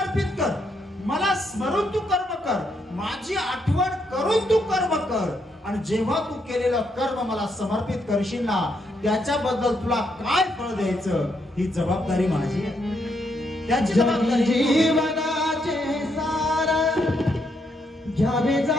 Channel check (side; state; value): both; normal; correlation 0.77